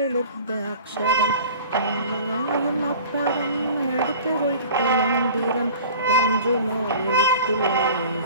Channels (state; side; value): inverted; both; correlation -0.42